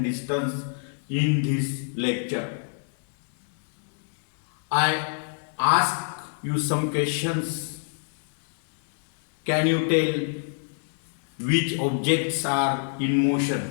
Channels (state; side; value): silent; right; digital silence